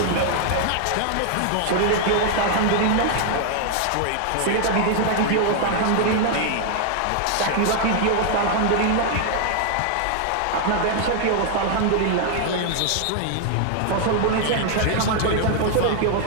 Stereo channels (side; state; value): both; different; correlation 0.00